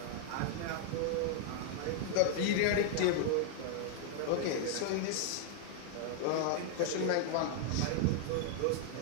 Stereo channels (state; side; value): different; both; correlation -0.01